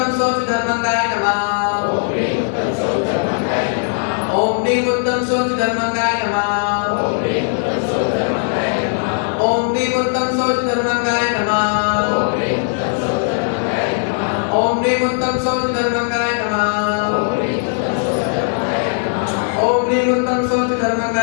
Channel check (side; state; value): right; silent; 67 dB below the other